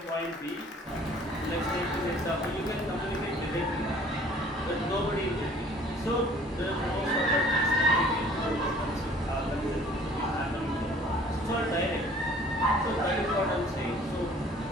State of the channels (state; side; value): normal; both; correlation 0.53